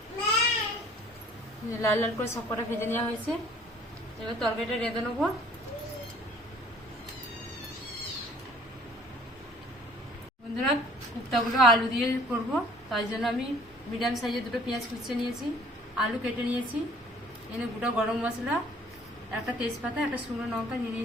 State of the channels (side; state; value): both; normal; correlation 0.54